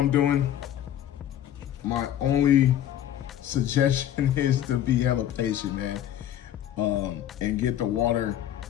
doing, my only suggestion is to be hella patient, man, and get the water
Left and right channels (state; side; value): quieter; right; 11.3 dB